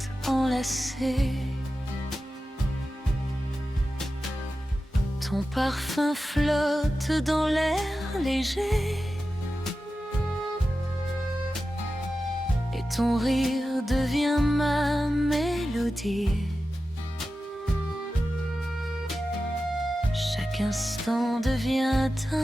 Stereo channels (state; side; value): normal; both; correlation 0.93